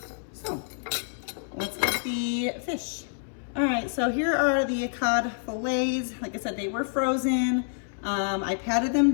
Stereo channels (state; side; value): silent; right; 60 dB below the other